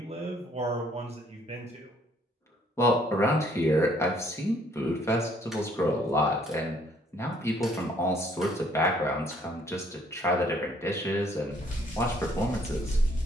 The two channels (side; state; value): both; normal; correlation 0.63